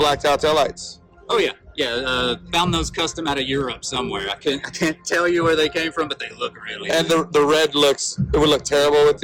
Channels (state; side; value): identical; both; correlation 1.00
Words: out tail lights. Oh yeah, yeah. Found those custom out of Europe somewhere. I can't tell you where they came from, but they look really. And the red it would look terrible with